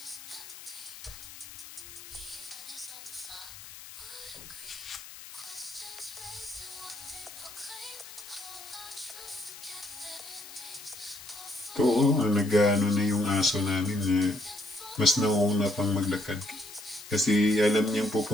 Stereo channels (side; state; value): left; noise; hiss, 15 dB below the sound